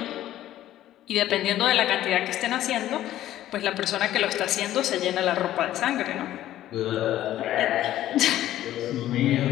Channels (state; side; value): quieter; right; 13.3 dB